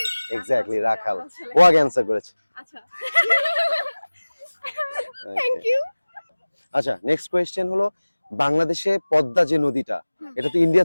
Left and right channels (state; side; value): inverted; both; correlation -1.00